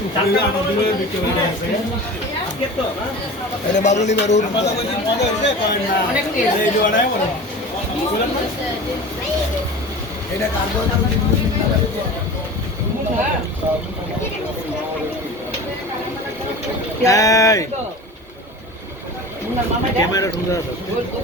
চারটা দূরে বিক্রি হয়ে আছে আজকে তো না এটা বাবুলি বারুর মজা হইছে করেন না অনেক টেস্ট এই জোড়ায় বড় বলেন না এটা কার্বন এই ক্যামেরা ঢুকে আছে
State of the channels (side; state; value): both; normal; correlation 0.35